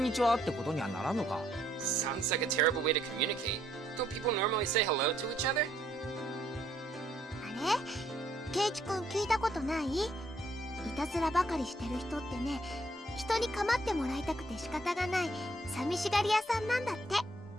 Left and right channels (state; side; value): normal; both; correlation 0.69